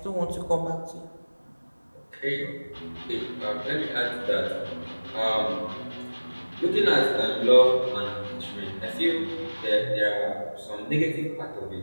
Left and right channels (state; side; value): inverted; both; correlation -1.00